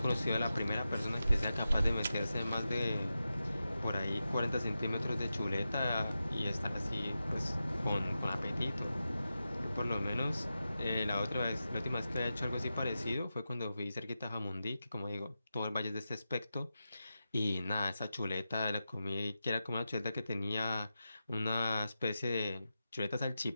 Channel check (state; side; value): inverted; both; correlation -0.91